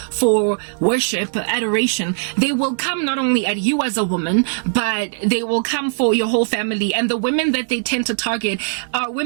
for worship, adoration. They will come not only at you as a woman, but they will come for your whole family. And the women that they tend to target are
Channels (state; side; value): silent; left; digital silence